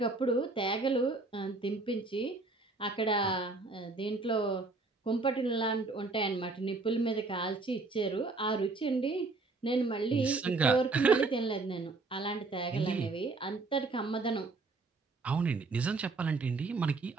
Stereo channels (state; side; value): quieter; left; 3.6 dB